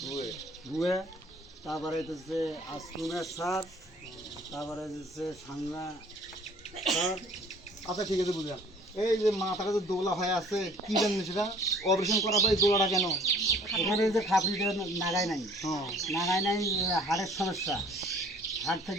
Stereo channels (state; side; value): normal; both; correlation 0.53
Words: ভুয়ে, তারপরে হচ্ছে আসকুমের স্যার, তারপরে হচ্ছে সাংনা স্যার। আচ্ছা ঠিক আছে, বুঝলাম। এই যে মাথাটা যে দোলা হয়ে আছে, কি জানেন সেটা? অপারেশন করার পরে এই দোলাটা কেন? এখানে যে খাপড়িটা নাগায় নাই, হ্যাঁ। নাগায় নাই, হাড়ের সমস্যা, হাড়